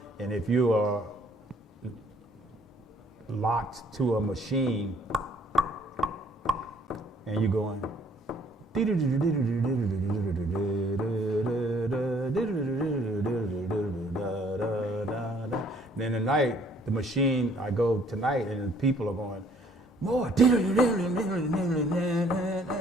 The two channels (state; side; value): normal; both; correlation 0.61